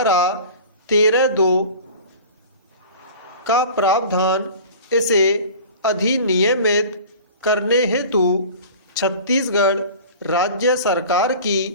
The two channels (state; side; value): inverted; both; correlation -0.40